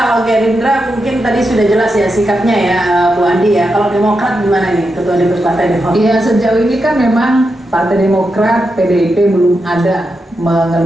Gerindra mungkin tadi sudah jelas ya sikapnya ya Bu Andi ya. Kalau Demokrat gimana nih Ketua DPP Partai Demokrat? Ya sejauh ini kan memang Partai Demokrat, PDIP belum ada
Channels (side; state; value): both; normal; correlation 0.87